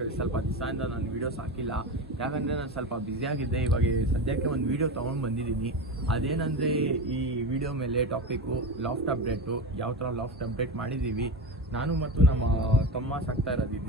ಸ್ವಲ್ಪ ದಿವಸದಿಂದ ನಾನು ವೀಡಿಯೋಸ್ ಹಾಕಿಲ್ಲ, ಯಾಕಂದರೆ ನಾನು ಸ್ವಲ್ಪ ಬ್ಯುಸಿಯಾಗಿದ್ದೆ. ಇವಾಗ ಸದ್ಯಕ್ಕೆ ಒಂದು ವೀಡಿಯೋ ತೊಗೊಂಡು ಬಂದಿದ್ದೀನಿ. ಅದೇನಂದರೆ ಈ ವಿಡಿಯೋ ಮೇಲೆ ಟಾಪಿಕ್ಕು ಲಾಫ್ಟ್ ಅಪ್ಡೇಟು, ಯಾವ ಥರ ಲಾಫ್ಟ್ ಅಪ್ಡೇಟ್ ಮಾಡಿದ್ದೀವಿ ನಾನು ಮತ್ತು ನಮ್ಮ ತಮ್ಮ ಸಾಕ್ತಾ ಇರೋದು ಇದು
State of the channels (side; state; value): both; normal; correlation 0.23